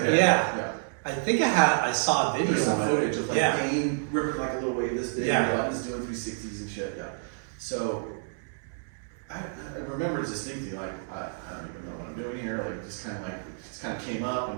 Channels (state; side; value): silent; left; 59 dB below the other